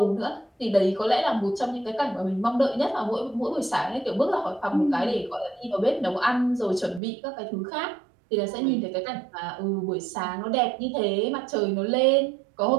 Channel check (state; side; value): drops out; left; at 7.0 s